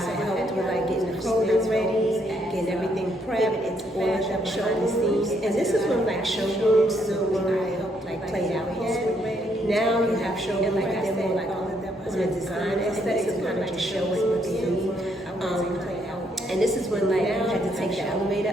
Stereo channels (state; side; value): normal; both; correlation 0.72